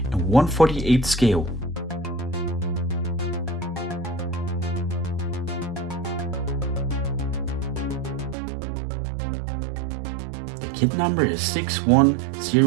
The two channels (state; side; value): drops out; left; at 8.3 s